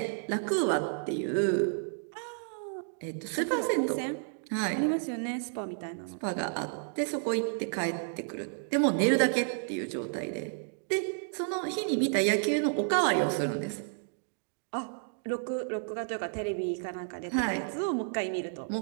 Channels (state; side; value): silent; left; digital silence